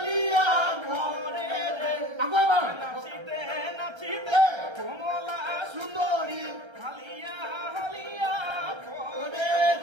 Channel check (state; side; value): late; left; 1.3 ms